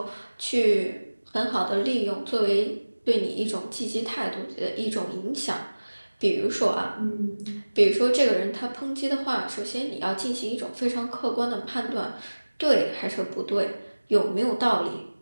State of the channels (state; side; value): inverted; both; correlation -1.00